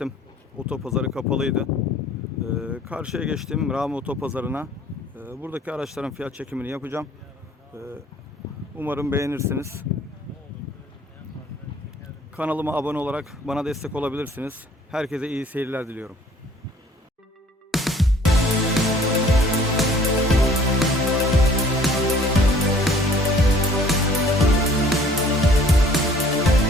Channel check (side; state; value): both; normal; correlation 0.55